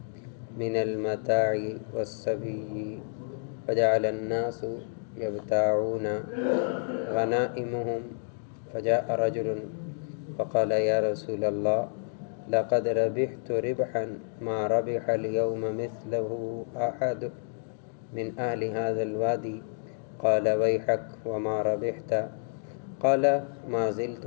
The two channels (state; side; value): silent; right; digital silence